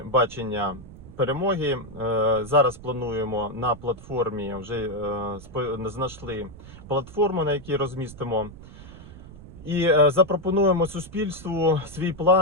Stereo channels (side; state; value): right; noise; rumble, 17 dB below the sound